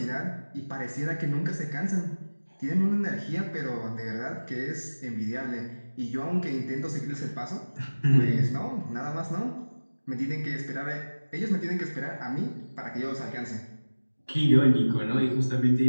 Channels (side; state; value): both; inverted; correlation -1.00